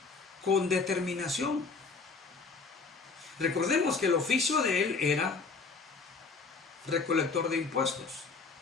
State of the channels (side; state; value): right; quieter; 4.5 dB